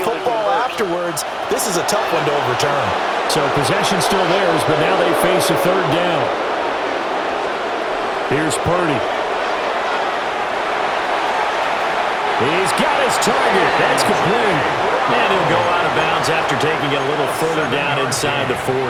football afterwards. This is a tough one to overturn. So possession still theirs, but now they face a 3rd down. Here's Purdy. He's got his target. That's complete. And he'll go out of bounds after taking it a little further down inside the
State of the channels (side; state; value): both; identical; correlation 1.00